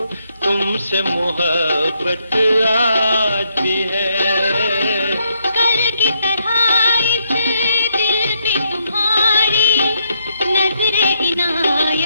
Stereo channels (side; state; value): both; inverted; correlation -0.76